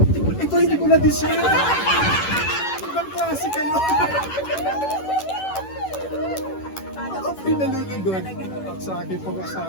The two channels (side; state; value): right; late; 10 ms